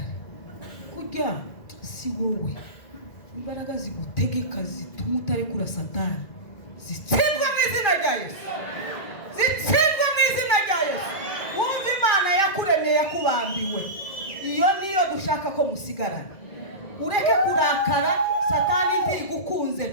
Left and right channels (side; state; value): right; late; 2.4 ms